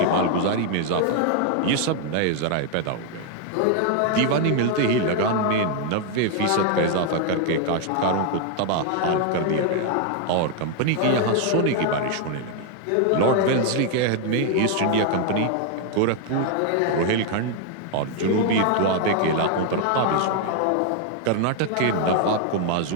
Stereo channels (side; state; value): both; different; correlation 0.00